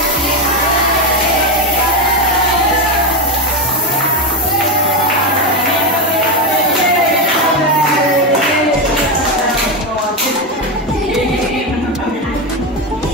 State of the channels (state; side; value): normal; both; correlation 0.11